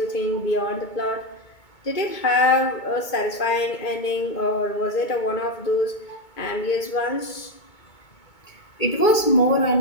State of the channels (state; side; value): late; right; 2.2 ms